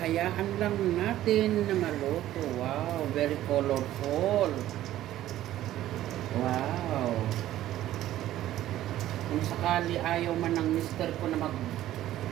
lang natin na maluto. Wow, very colorful. Wow. Kung sakali ayaw man ng mister ko na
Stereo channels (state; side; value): quieter; left; 13.6 dB